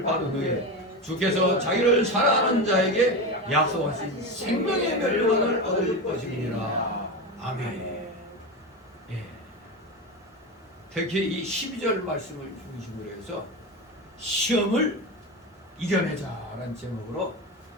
받은 후에 주께서 자기를 사랑하는 자에게 약속하신 생명의 멸류관을 얻을 것이니라. 아멘. 예. 특히 이 12절 말씀을 중심으로 해서 시험을 이겨내자라는 제목으로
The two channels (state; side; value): normal; both; correlation 0.20